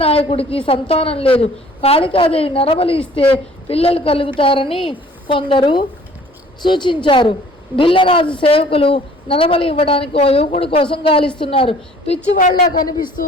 సంతానం లేదు. కాళికాదేవి నరబలి ఇస్తే పిల్లలు కలుగుతారని కొందరు సూచించారు. బిల్లరాజు సేవకులు నరబలి ఇవ్వడానికి ఓ యువకుడి కోసం గాలిస్తున్నారు. పిచ్చివాళ్ల కనిపిస్తూ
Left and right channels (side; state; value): both; normal; correlation 0.53